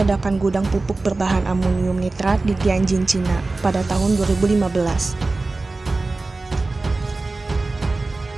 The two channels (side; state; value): left; quieter; 3.4 dB